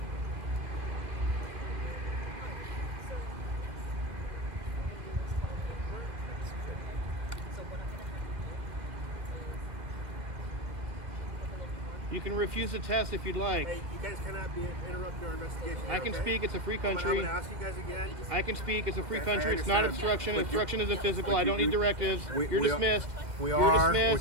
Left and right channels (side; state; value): left; late; 1.8 ms